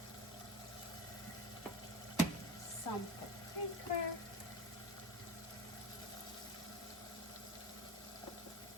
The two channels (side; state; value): both; normal; correlation 0.30